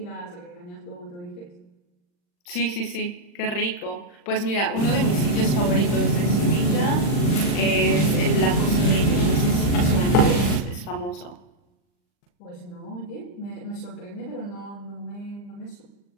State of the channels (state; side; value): late; right; 40 ms